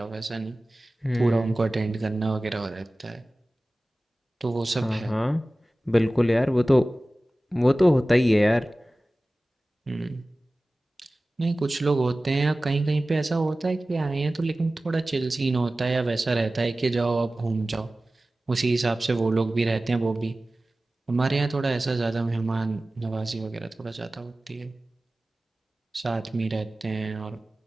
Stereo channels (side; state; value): both; normal; correlation 0.97